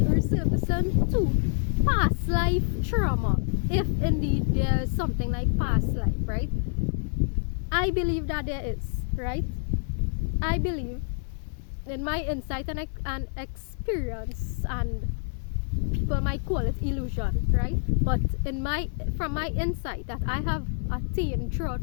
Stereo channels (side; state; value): right; silent; digital silence